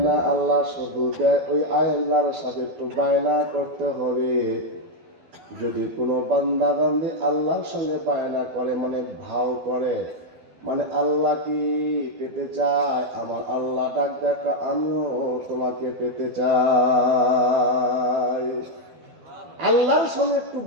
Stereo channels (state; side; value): late; left; 12 ms